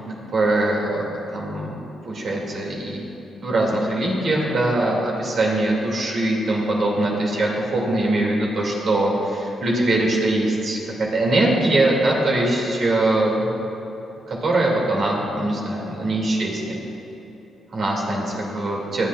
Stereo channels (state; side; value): normal; both; correlation 0.83